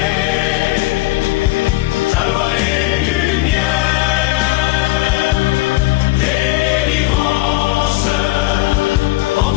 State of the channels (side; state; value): right; quieter; 19.8 dB